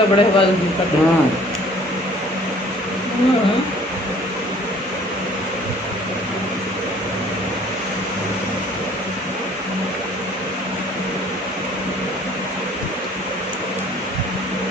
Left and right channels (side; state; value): both; normal; correlation 0.54